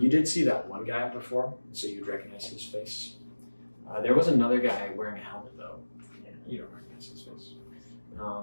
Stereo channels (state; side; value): inverted; both; correlation -1.00